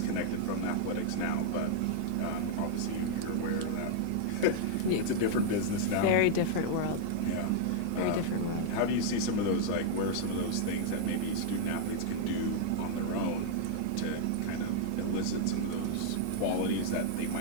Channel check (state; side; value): different; both; correlation -0.01